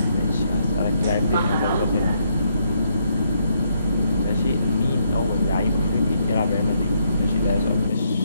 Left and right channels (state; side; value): inverted; both; correlation -0.74